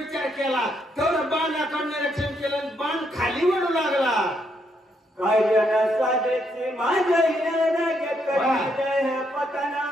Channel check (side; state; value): both; normal; correlation 0.76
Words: केला तर बाणाकडून निरीक्षण केलं आणि बाण खाली वळू लागला. कार्य साधेची माझ्या